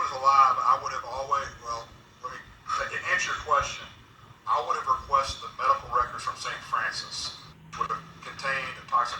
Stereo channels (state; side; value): identical; both; correlation 1.00